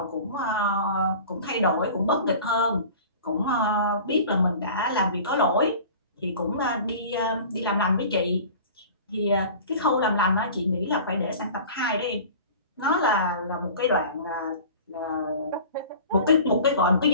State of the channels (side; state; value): both; inverted; correlation -0.41